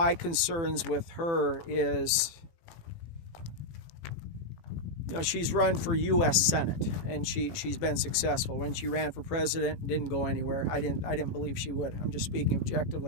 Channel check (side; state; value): right; late; 18 ms